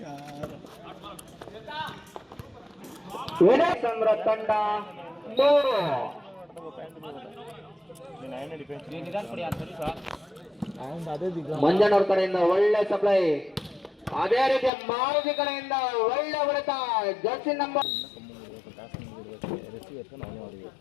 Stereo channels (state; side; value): drops out; right; at 14.7 s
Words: ವಿನಯಚಂದ್ರ ತಂಡ 3 ಮಂಜನವ್ರ ಕಡೆಯಿಂದ ಒಳ್ಳೆ ಸಪ್ಲೈ ಅದೇ ರೀತಿ ಮಾರುತಿ ಕಡೆಯಿಂದ ಒಳ್ಳೆ ಹೊಡೆತ ಜರ್ಸಿ ನಂಬರ್